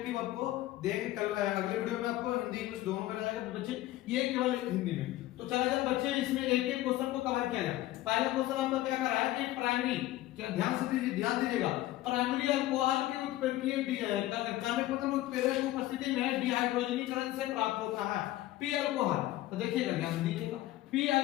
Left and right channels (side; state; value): right; quieter; 15.7 dB